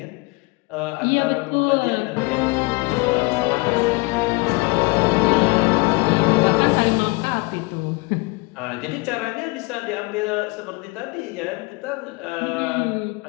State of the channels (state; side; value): quieter; right; 26.5 dB